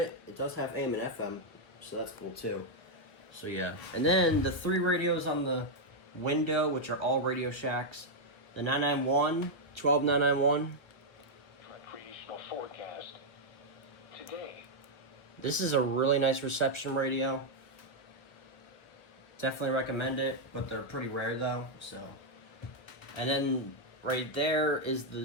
It does have AM and FM, so that's cool too. So yeah, and then the 3 radios on the window, which are all Radio Shacks. The 991, 12991. Recreational forecast. Today. This is a really nice reception radio. Definitely recommend it, but they're pretty rare though, so. And then right there is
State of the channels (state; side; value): late; right; 1.2 ms